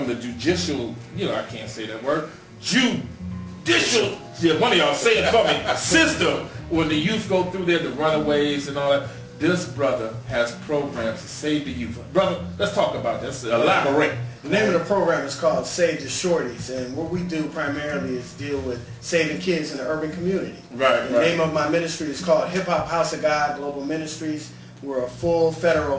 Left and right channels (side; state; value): both; identical; correlation 1.00